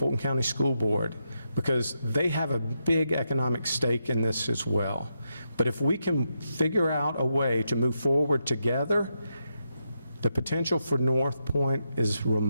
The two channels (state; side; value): inverted; both; correlation -0.84